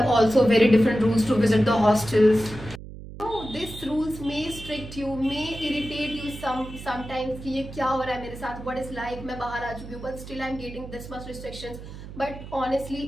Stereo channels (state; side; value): noise; right; hum, 13 dB below the sound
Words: also very different rules to visit the hostels. No, these rules may strict you, may irritate you sometimes. कि ये क्या हो रहा है मेरे साथ? What is life? मैं बाहर आ चुकी हूँ, but still I'm getting this much restrictions. But honestly,